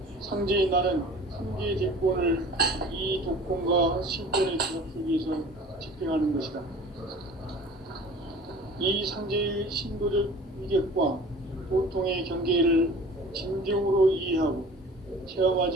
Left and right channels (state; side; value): normal; both; correlation 0.44